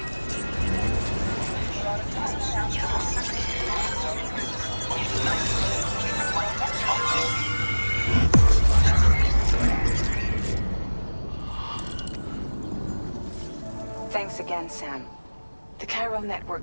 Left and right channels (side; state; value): both; inverted; correlation -1.00